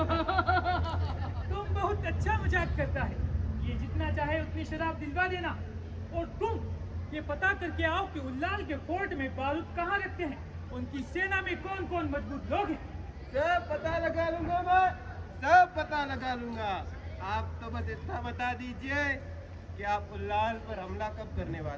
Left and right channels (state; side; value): identical; both; correlation 1.00